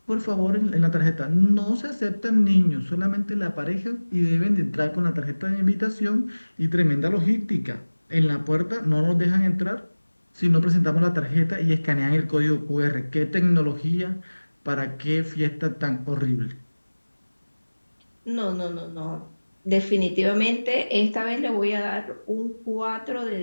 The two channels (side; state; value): both; inverted; correlation -1.00